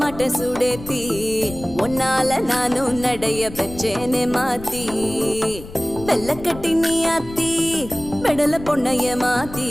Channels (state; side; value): noise; left; rumble, 14 dB below the sound